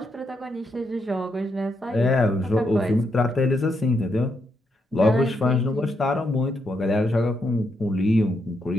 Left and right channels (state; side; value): normal; both; correlation 0.80